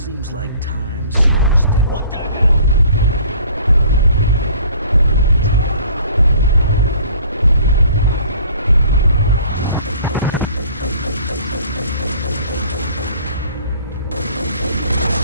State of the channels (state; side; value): inverted; both; correlation -0.52